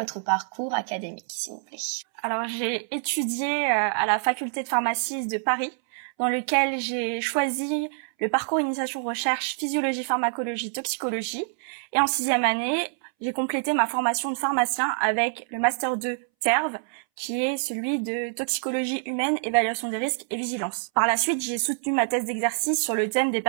parcours académique, s'il vous plaît? Alors, j'ai étudié à la faculté de pharmacie de Paris, dans lequel j'ai choisi le parcours initiation recherche physiologie, pharmacologie, toxicologie. Et en 6e année, j'ai complété ma formation de pharmacien avec le Master 2 TERV, qui est celui de toxicologie humaine, évaluation des risques et vigilance. Par la suite, j'ai soutenu ma thèse d'exercice sur le thème des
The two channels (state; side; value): silent; left; 61 dB below the other